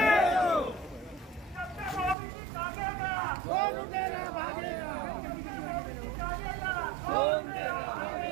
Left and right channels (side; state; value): left; drops out; at 2.1 s